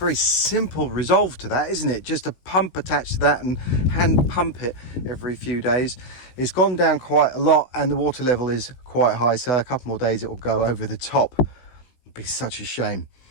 simple resolve to that, isn't it? Just a pump attached to that and hand pump it every few days. It's gone down quite a lot and the water level is quite high, so a couple more days it will go over the top. It'd be such a shame.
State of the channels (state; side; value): late; right; 16 ms